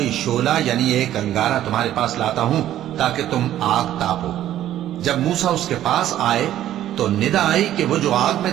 شعلہ یعنی ایک انگارہ تمہارے پاس لاتا ہوں تاکہ تم آگ تاپو۔ جب موسیٰ اس کے پاس آئے تو ندا آئی کہ وہ جو آگ میں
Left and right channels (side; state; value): left; quieter; 12.4 dB